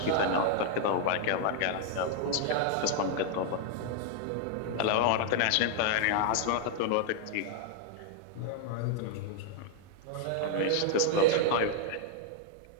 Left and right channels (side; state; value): both; different; correlation 0.00